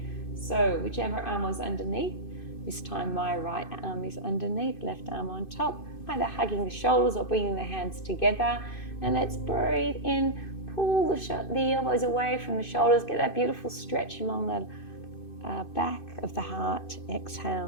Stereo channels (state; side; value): late; right; 2.6 ms